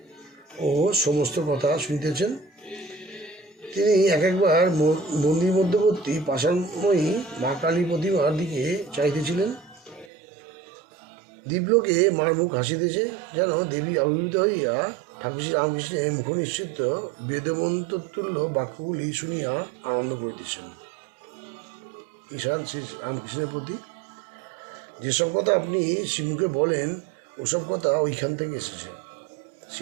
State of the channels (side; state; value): left; drops out; at 10.1 s